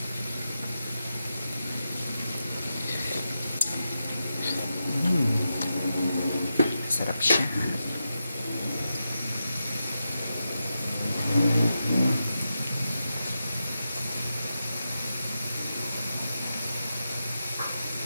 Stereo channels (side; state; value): both; inverted; correlation -0.89